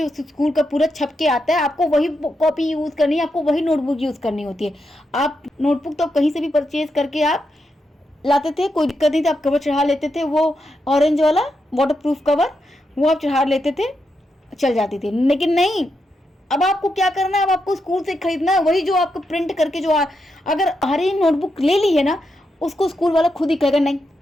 उस स्कूल का पूरा छप के आता है, आपको वही कॉपी यूज़ करनी है, आपको वही नोटबुक यूज़ करनी होती है। आप नोटबुक तो कहीं से भी परचेज करके आप लाते थे, कोई दिक्कत नहीं था, आप कवर चढ़ा लेते थे, वो ऑरेंज वाला वाटर प्रूफ कवर वो आप चढ़ा लेते थे, चल जाती थी। लेकिन नहीं, अब आपको क्या करना है, अब आपको स्कूल से खरीदना है वही जो आपको प्रिंट करके जो अगर हरी नोटबुक ले ली है ना, उसको स्कूल वाला खुद ही कहेगा नहीं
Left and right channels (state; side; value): normal; both; correlation 0.84